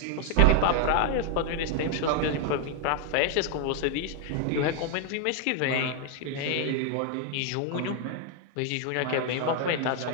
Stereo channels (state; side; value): different; both; correlation 0.00